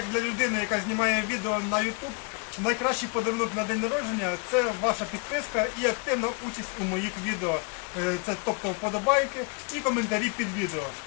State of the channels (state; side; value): quieter; right; 33.6 dB